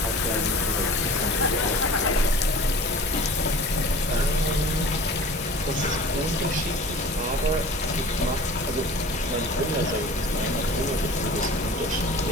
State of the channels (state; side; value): normal; both; correlation 0.42